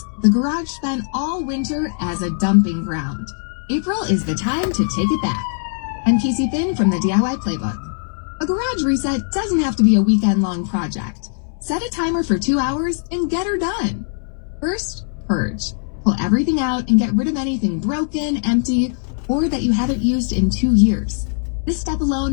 the garage spent all winter as a dumping ground. April is the time to take it back. I'm Casey Finn from the DIY Playbook. A garage reset doesn't have to be a weekend-long project. Set a timer for 2 hours and get her done. First, purge. Pull everything out and get rid of anything broken, empty, or that you haven't used in 2 years. This step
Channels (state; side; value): silent; right; digital silence